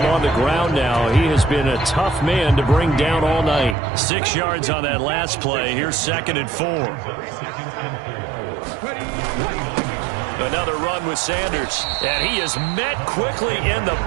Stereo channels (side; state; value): left; drops out; at 3.8 s